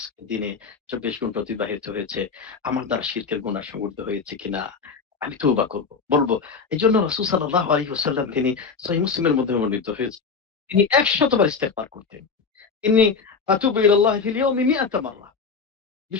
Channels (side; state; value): right; quieter; 5.2 dB